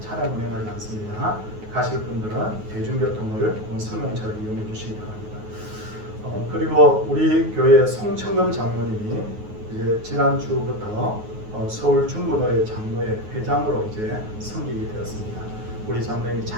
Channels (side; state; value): left; late; 9.4 ms